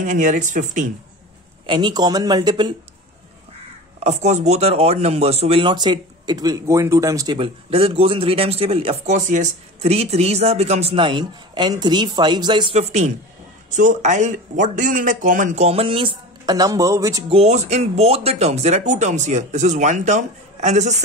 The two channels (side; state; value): both; normal; correlation 0.32